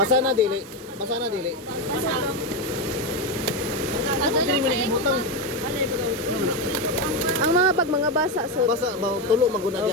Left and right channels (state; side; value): normal; both; correlation 0.11